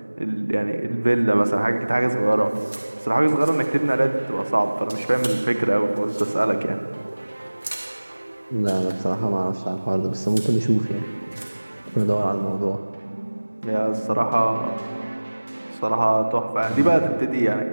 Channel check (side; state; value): both; inverted; correlation -1.00